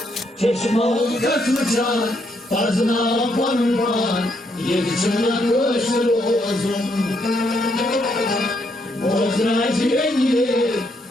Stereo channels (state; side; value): normal; both; correlation 0.75